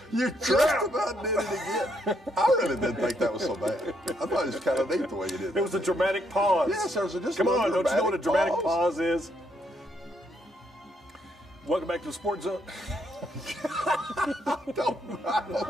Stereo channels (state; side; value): normal; both; correlation 0.74